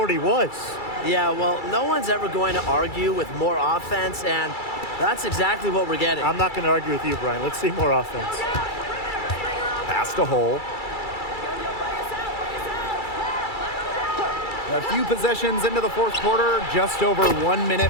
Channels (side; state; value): right; late; 2.3 ms